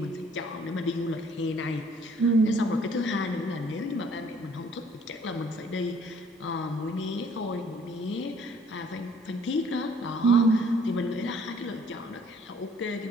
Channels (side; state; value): both; normal; correlation 0.60